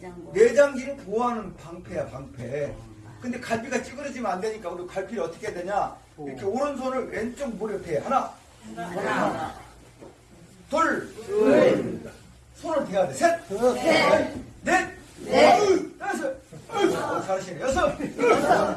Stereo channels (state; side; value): identical; both; correlation 1.00